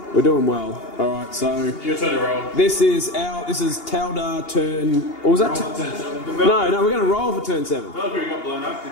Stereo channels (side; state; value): right; late; 2.8 ms